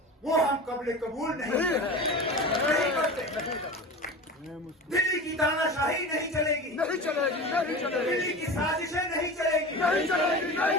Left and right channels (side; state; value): both; normal; correlation 0.32